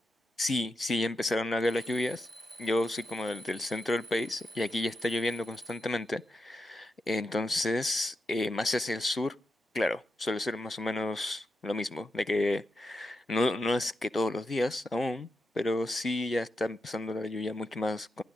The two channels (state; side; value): normal; both; correlation 0.86